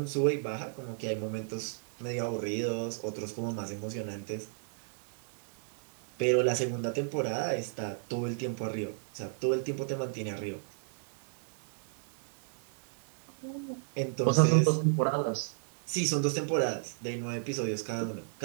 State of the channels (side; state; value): left; silent; 55 dB below the other